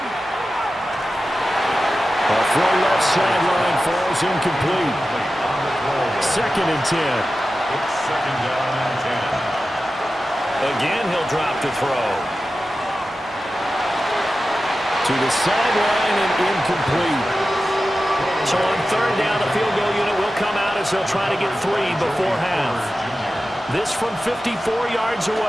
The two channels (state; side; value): normal; both; correlation 0.93